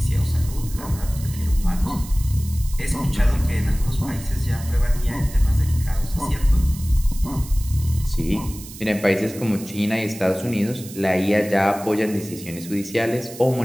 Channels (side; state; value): right; noise; hiss, 15 dB below the sound